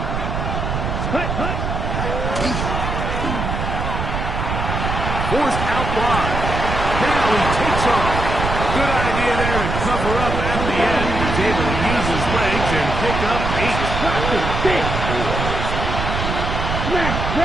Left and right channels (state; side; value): noise; right; rumble, 3 dB below the sound